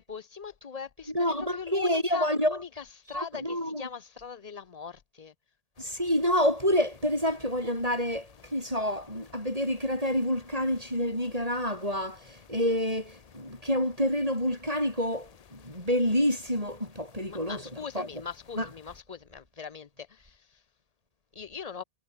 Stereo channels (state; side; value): late; left; 1.8 ms